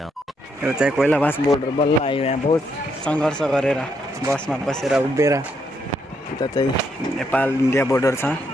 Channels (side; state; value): both; normal; correlation 0.76